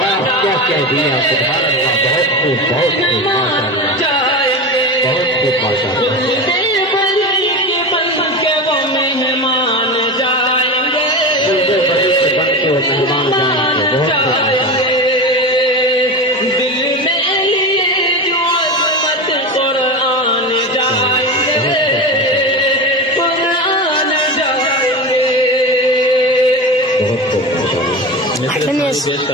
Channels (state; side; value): normal; both; correlation 0.25